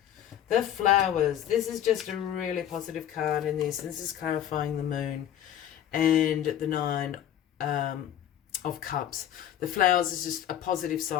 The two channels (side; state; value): right; quieter; 10.7 dB